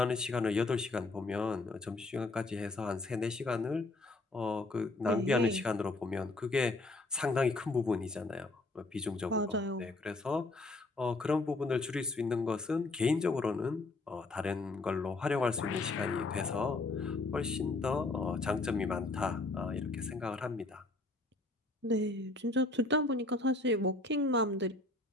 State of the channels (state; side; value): quieter; right; 3.1 dB